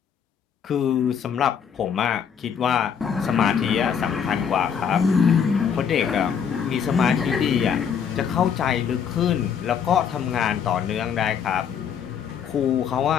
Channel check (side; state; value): right; quieter; 7.5 dB